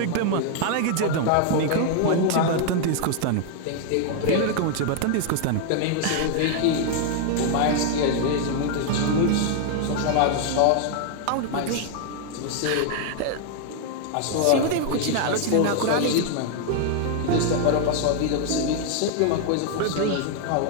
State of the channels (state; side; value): different; both; correlation 0.00